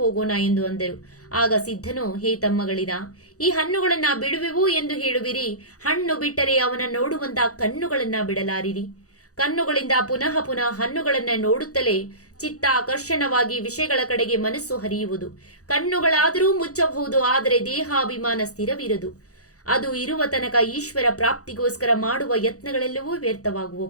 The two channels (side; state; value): right; late; 0.66 ms